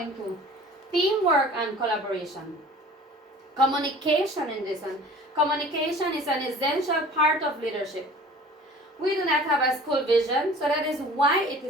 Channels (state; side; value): normal; both; correlation 0.45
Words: Teamwork and Collaboration. Communication in this one. Communication is an essential part of leadership. We do not have a school vision, so that is why it